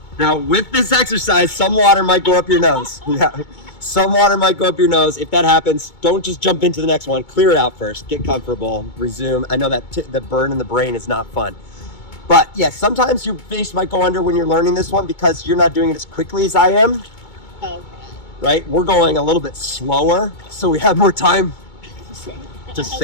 Now, with this exercise, some water might go up your nose. Yeah. Some water might go up your nose. If that happens, don't just jump into the next one. Clear it out first. Get comfortable. Resume. I know that the burn in the brain is not fun. But yes, sometimes your face might go under when you're learning this one because you're not doing it as quickly as I am. Okay. Right? We're going a little bit slower, so we have more time to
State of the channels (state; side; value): late; right; 2.2 ms